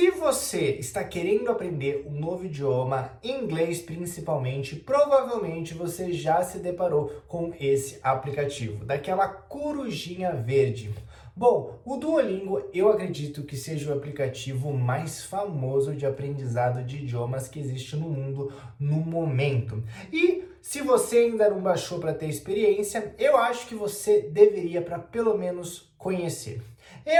você está querendo aprender um novo idioma, inglês principalmente, provavelmente você já se deparou com esse aplicativo, daquela corujinha verde. Bom, o Duolingo eu acredito que seja o aplicativo mais famoso de aprendizado de idiomas que existe no mundo no momento. E se você ainda não baixou para ter experiência, eu acho que você deveria para pelo menos conhecer.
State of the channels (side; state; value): both; identical; correlation 1.00